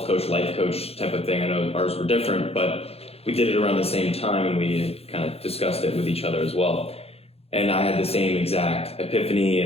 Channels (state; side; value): late; right; 0.29 ms